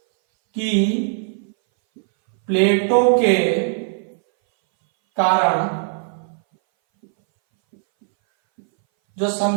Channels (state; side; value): silent; left; 62 dB below the other